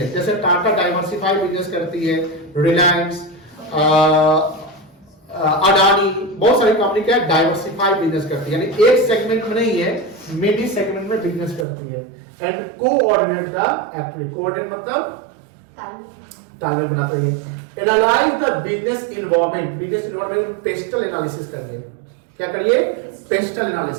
जैसे टाटा डाइवर्सिफाइड बिजनेस करती है, रिलायंस, अडानी, बहुत सारी कंपनी क्या है, डाइवर्सिफाइड बिजनेस करती है, यानी एक सेगमेंट में नहीं है, मेनी सेगमेंट में बिजनेस करती है। And coordinate the activity, coordinate मतलब तालमेल बनाते हैं। Analyse the business environment, business environment pastel analysis करिए। क्या करिए, पेस्टल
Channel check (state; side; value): drops out; left; at 11.7 s